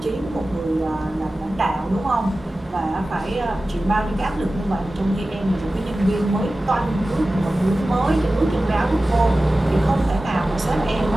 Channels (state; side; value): normal; both; correlation 0.95